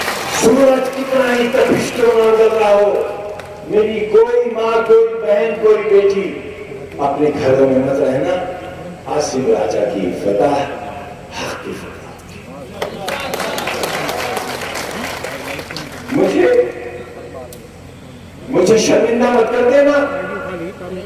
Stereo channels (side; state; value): both; identical; correlation 1.00